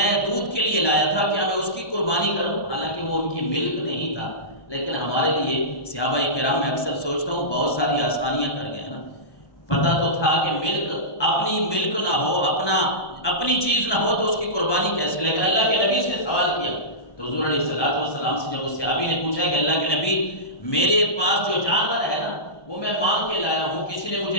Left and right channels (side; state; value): right; late; 1.2 ms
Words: دودھ کے لیے لایا تھا، کیا میں اس کی قربانی کروں؟ حالانکہ وہ ان کی ملک نہیں تھا، لیکن ہمارے لیے صحابہ کرام میں اکثر سوچتا ہوں بہت ساری آسانیاں کر گئے ہیں نا۔ پتہ تو تھا کہ ملک، اپنی ملک نہ ہو، اپنی چیز نہ ہو تو اس کی قربانی کیسے؟ لیکن اللہ کے نبی سے سوال کیا تو حضور علیہ السلام سے جب اس صحابی نے پوچھا کہ اللہ کے نبی میرے پاس جو جانور ہے نا وہ میں مانگ کے لایا ہوں، کسی نے